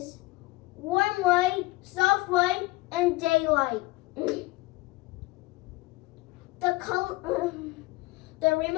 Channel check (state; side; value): quieter; right; 21.2 dB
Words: warm white, soft white, and daylight. The